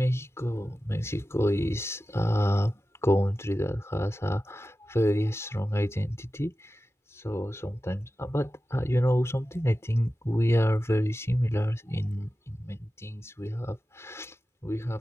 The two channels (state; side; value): normal; both; correlation 0.94